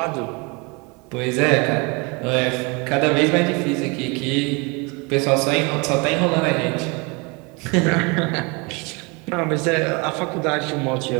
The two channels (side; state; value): left; quieter; 29.2 dB